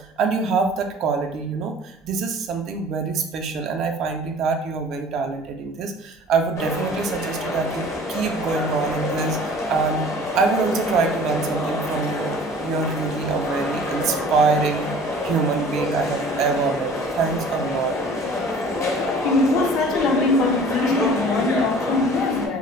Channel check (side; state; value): both; normal; correlation 0.47